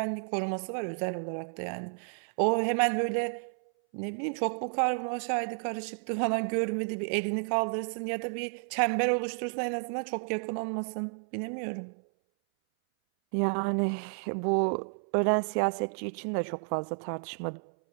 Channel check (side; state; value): left; silent; 57 dB below the other